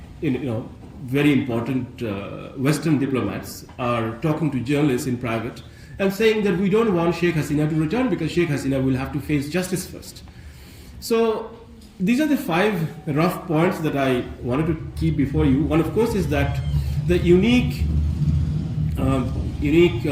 very important Western diplomats are talking to journalists in private and saying that we don't want Sheikh Hasina to return because Sheikh Hasina will have to face justice first. So these are the 5 rough points that I wanted to keep before you. One, of course, is that the unique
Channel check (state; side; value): identical; both; correlation 1.00